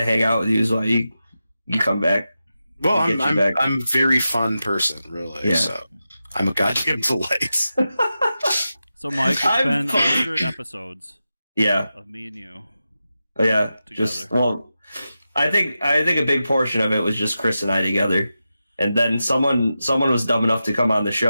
hang out with you. Is why you come back. Well, I'm a very fun person, really. Yeah. So I'm a goddamn delight. So, Mike, it's been 100 episodes. Yeah. Of me and you. Yeah. Together. I think a big portion of it was just Chris and I together, and then someone was dumb enough to come on the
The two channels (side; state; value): both; inverted; correlation -0.91